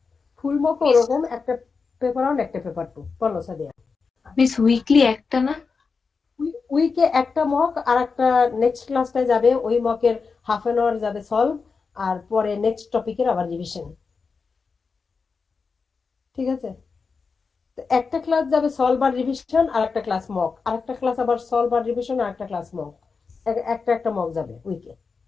ফুল মক ওরকম, একটা পেপার 1 একটা পেপার 2। বলো সাদিয়া। মিস উইকলি একটা না? উইকে একটা মক, আর একটা নেক্সট ক্লাসটায় যাবে ওই মকের হাফ অ্যান আওয়ার যাবে সলভ, আর পরে নেক্সট টপিকের আবার রিভিশন। ঠিক আছে? তো একটা ক্লাস যাবে সলভ আর রিভিশন, আর একটা ক্লাস মক, আর একটা ক্লাস আবার সলভ আর রিভিশন, আর একটা ক্লাস মক, একটা একটা মক যাবে উইকে।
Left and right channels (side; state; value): right; quieter; 4.9 dB